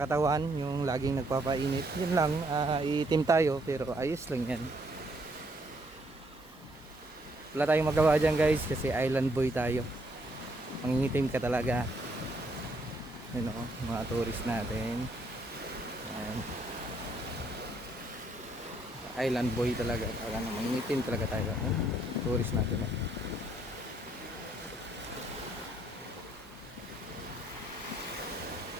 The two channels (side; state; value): both; normal; correlation 0.70